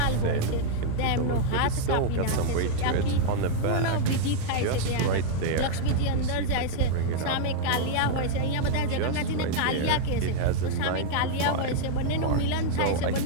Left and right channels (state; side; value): different; both; correlation -0.01